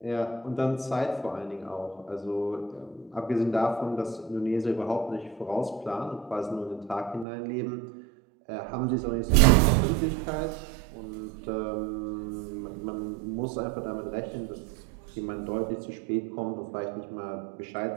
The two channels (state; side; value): drops out; left; at 7.2 s